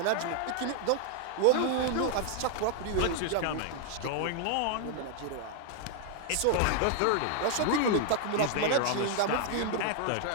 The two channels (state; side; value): different; both; correlation 0.00